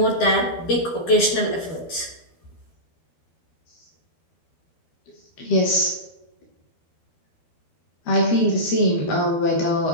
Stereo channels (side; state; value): right; late; 12 ms